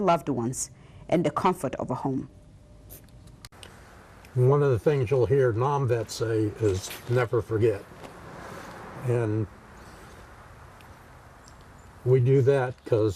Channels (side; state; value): both; identical; correlation 1.00